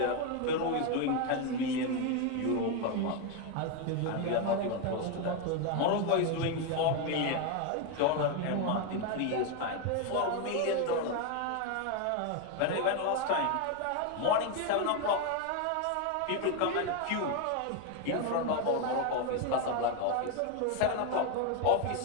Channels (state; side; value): different; both; correlation 0.02